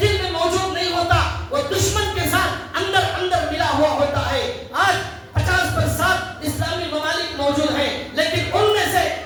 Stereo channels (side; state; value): both; identical; correlation 1.00